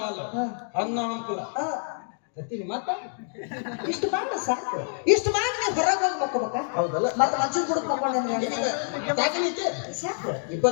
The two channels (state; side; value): silent; right; digital silence